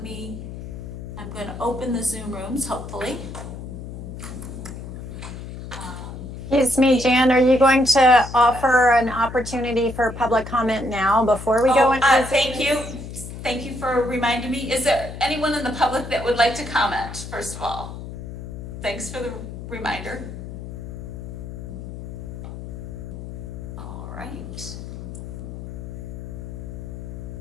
I'm going to open the Zoom rooms, hopefully. Excuse me, Jan, are you going to offer an opportunity for public comment now before we go into the Zoom? Thank you. Thank you for reminding me. Is there anyone in the public that would like to comment, first of all? Thanks for the reminder. All right.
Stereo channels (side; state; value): left; noise; hum, 10 dB below the sound